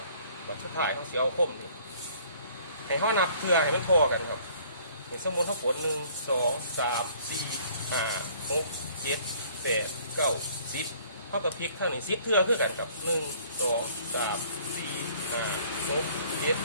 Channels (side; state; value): both; inverted; correlation -0.57